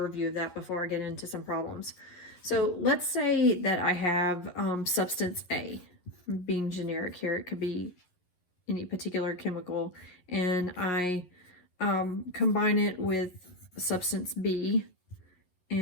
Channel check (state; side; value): late; right; 11 ms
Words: of that before I get into some problems. So let's say that I have substance A, being generic here. It could be any particular chemical, and I combine it with substance B,